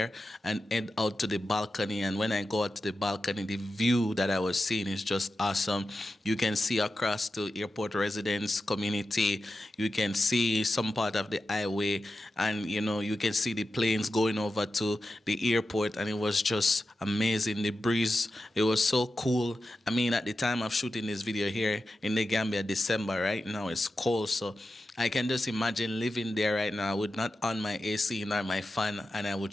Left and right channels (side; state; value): both; normal; correlation 0.91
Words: and head out to the balcony. And when I go out to the balcony, the view that I was seeing is just awesome. You can see across to airport residence community. You can see some part of the highway, and, you know, you can see the planes going over to the airport. And it was just amazing. The breeze, it was so cool. I mean, at the time of shooting this video here in the Gambia, December, right now it's cold, so I can just imagine living there right now. I would not on my AC nor my fan, and I would